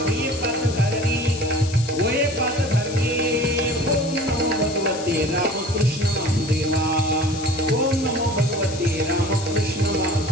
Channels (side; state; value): left; noise; hiss, 12 dB below the sound